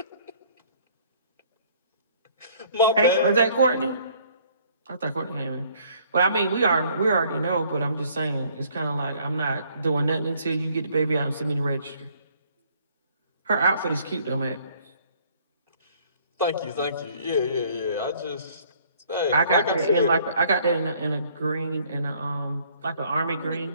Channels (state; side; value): inverted; both; correlation -0.60